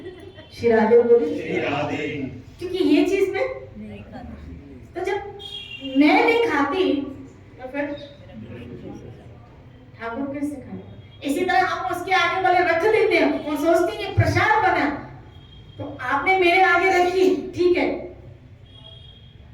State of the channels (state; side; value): identical; both; correlation 1.00